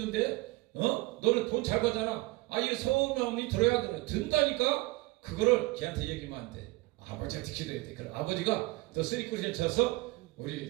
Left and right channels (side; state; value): left; quieter; 22.0 dB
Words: 너는 돈 잘 벌잖아. 이 서운함이 들어야 돼. 든다니까 그거를 걔한테 얘기하면 안 돼. 아버지한테 기도해야 돼. 그럼 아버지가 더 쓰리꾸리를 쳐서